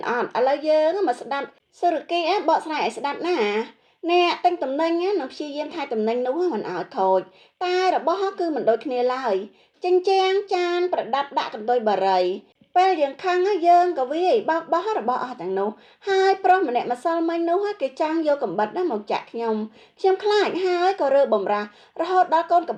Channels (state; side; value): identical; both; correlation 1.00